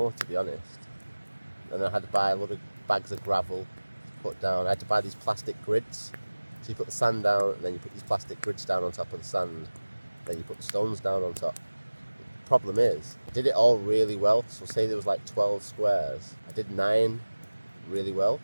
to be honest. And then I had to buy a lot of bags of gravel to put down. I had to buy these plastic grids. So you put the sand down, and then you put these plastic grids down on top of the sand. Then you put the stones down on top. The problem is, I did it all really well. So say there was like 12 squares. I did 9 really well.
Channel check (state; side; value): inverted; both; correlation -1.00